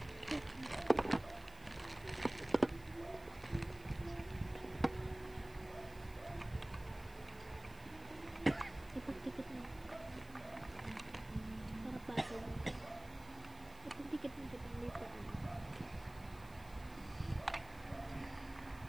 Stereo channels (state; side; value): noise; right; hiss, 22 dB below the sound